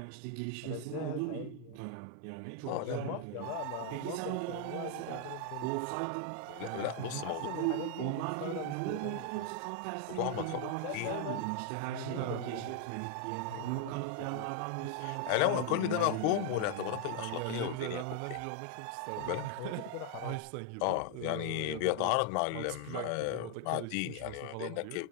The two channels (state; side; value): different; both; correlation 0.00